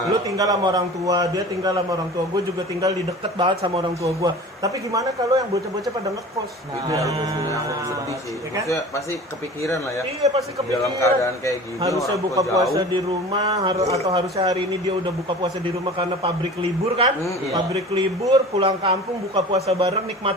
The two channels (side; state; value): both; normal; correlation 0.39